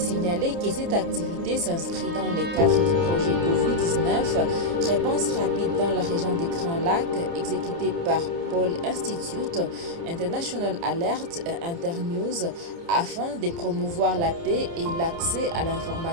que cette activité s'inscrit dans le cadre du projet Covid-19, réponse rapide dans la région des Grands Lacs, exécuté par Paul Institute, International Alert et Internews, afin de promouvoir la paix et l'accès à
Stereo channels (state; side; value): late; left; 29 ms